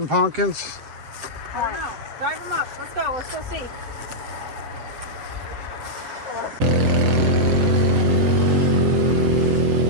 pumpkins? I don't know. Drive him up. Let's go. Let's go see.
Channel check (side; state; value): left; late; 7.9 ms